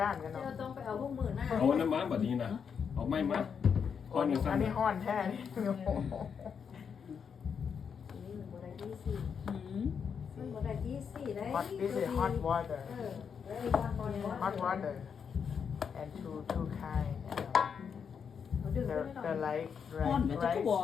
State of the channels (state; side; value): quieter; right; 6.8 dB